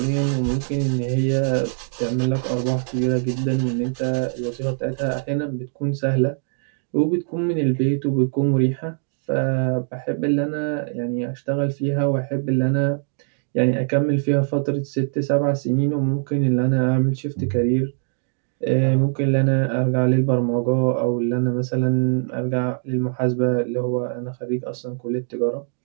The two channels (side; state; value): left; silent; 64 dB below the other